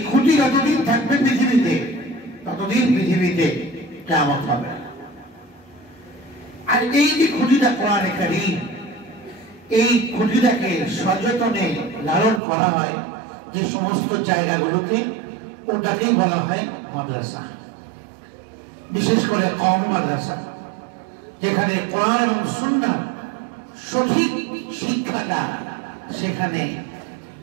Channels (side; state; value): left; drops out; at 12.4 s